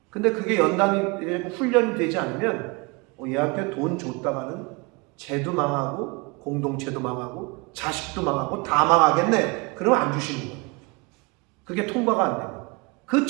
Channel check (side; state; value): left; quieter; 28.2 dB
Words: 근데 그게 연단이 훈련이 되지 않으면 얘한테 돈 줬다가는 쟤도 망하고 공동체도 망하고 자식도 망하고 다 망하겠네. 그러면 안 주시는 거예요. 그게 통과가 안 돼요. 그